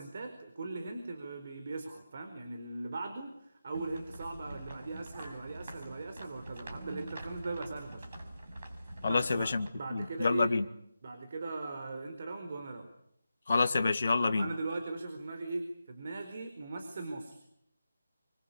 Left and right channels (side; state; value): both; inverted; correlation -0.89